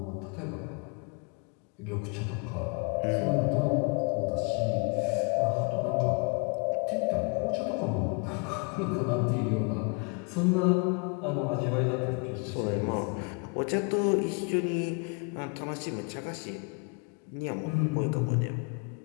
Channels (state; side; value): quieter; right; 34.3 dB